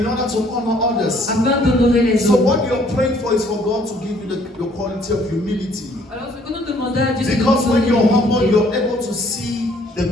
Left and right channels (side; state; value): both; normal; correlation 0.61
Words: order to honor others. afin d'honorer les So autres. what you're praying for is for God to give you the quality of humility. Alors ce que nous demandons à Dieu, c'est de Because nous when donner you're humble, l'humilité. you're able to see the